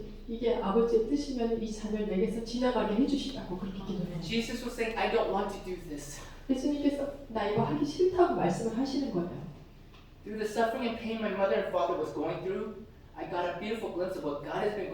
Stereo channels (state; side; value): identical; both; correlation 1.00